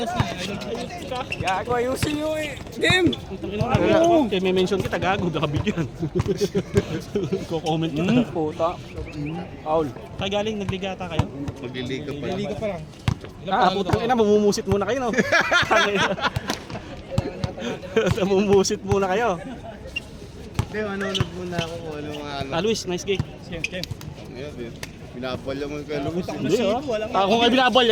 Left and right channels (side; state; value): both; identical; correlation 1.00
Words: na. Gago ayusin nyo eh. Game! Utang ina na. Kaya may mention kita gago, nakabigyan. Ko-comment ka. Puta. Paul. Kagaling, nagligata kayo? Magliliga pa lang. Liga pa lang. Putang ina, mamumusit muna kayo no? Mamumusit muna kayo. Hindi, manonood muna ako kung ano mga ano. Luis, nice gig. Ngayon, din. Binabalya mo kay Luis. Hindi ah. Ako nga